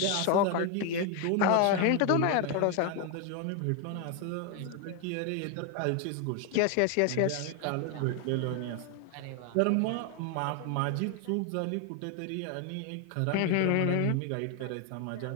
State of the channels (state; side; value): different; both; correlation 0.01